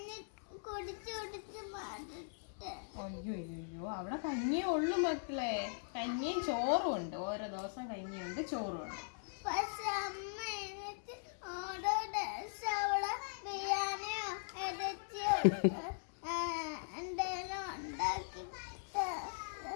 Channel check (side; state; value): right; silent; digital silence